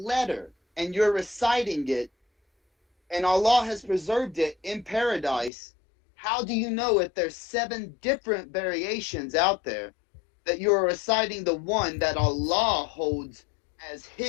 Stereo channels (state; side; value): drops out; right; at 5.5 s